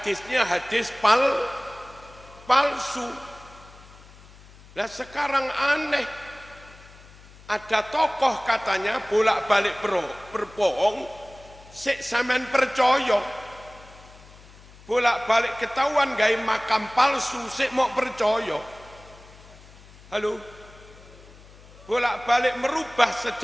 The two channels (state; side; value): noise; left; hum, 22 dB below the sound